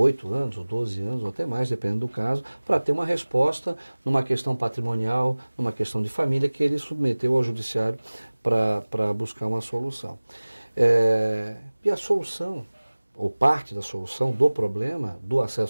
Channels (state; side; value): inverted; both; correlation -1.00